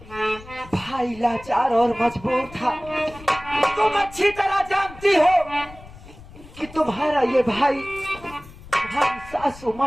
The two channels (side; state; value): left; noise; rumble, 19 dB below the sound